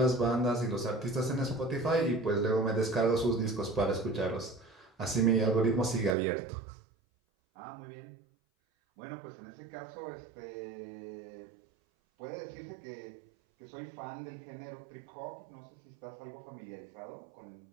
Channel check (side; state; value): left; drops out; at 6.2 s